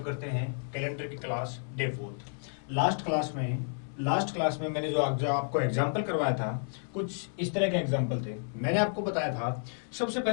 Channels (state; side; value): silent; right; digital silence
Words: करते हैं कैलेंडर की क्लास डे 4। लास्ट क्लास में मैंने जो आपको एग्जाम्पल करवाया था, कुछ इस तरह के एग्जाम्पल थे। मैंने आपको बताया था सबसे